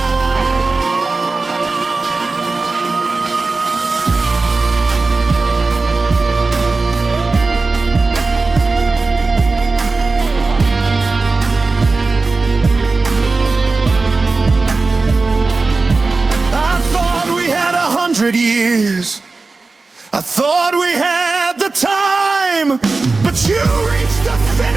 I thought we had 100 years. I thought we had the time, but you reached the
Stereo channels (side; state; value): left; quieter; 3.8 dB